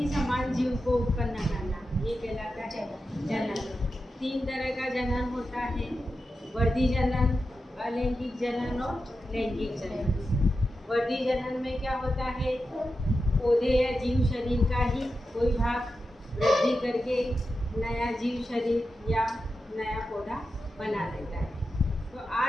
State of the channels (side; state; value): both; normal; correlation 0.90